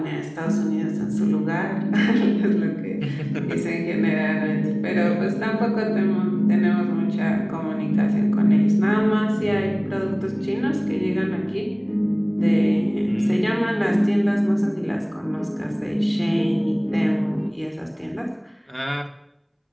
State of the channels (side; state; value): both; identical; correlation 1.00